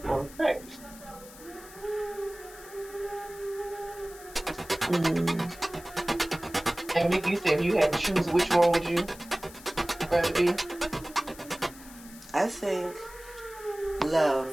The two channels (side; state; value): left; noise; hiss, 19 dB below the sound